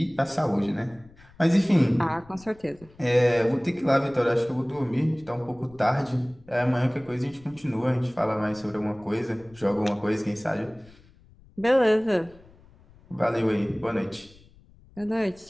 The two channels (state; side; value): noise; left; rumble, 26 dB below the sound